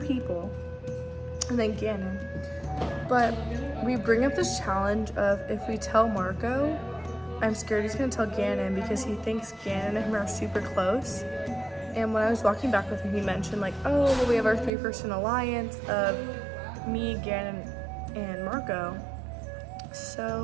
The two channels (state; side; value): drops out; left; at 14.7 s